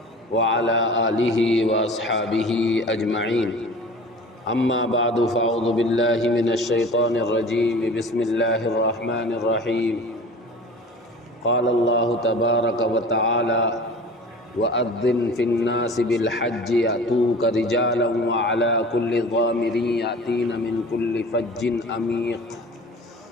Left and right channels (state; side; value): normal; both; correlation 0.40